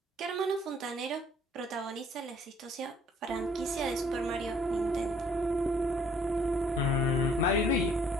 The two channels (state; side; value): normal; both; correlation 0.60